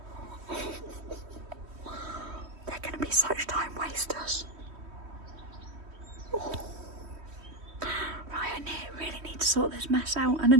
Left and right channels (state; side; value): late; left; 3.1 ms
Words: They're going to be such time wasters. Oh. Right, I really need to sort this mess out, and I